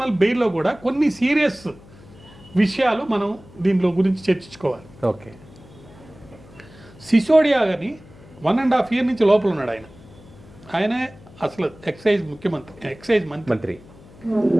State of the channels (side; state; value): left; noise; hum, 22 dB below the sound